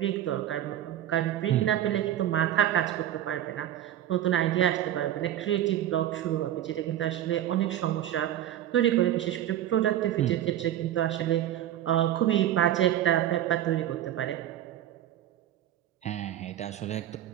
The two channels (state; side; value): quieter; left; 12.0 dB